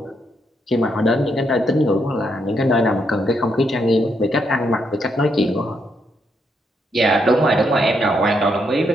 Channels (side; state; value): both; normal; correlation 0.77